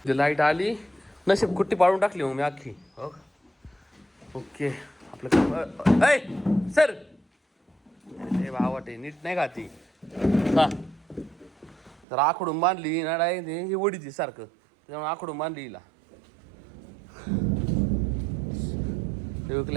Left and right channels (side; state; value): left; drops out; at 12.1 s